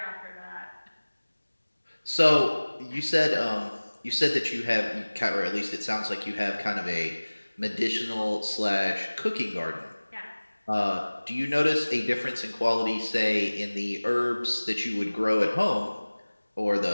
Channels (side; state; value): both; inverted; correlation -1.00